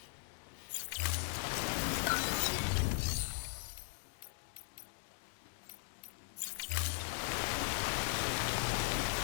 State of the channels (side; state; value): right; silent; digital silence